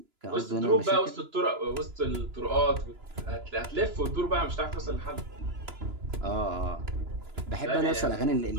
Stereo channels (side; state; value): left; late; 2.9 ms